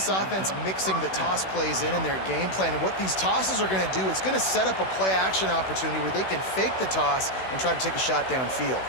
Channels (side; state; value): right; late; 16 ms